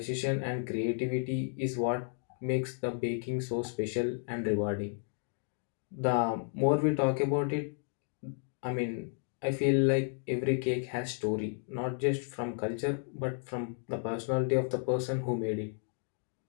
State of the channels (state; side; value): silent; right; 56 dB below the other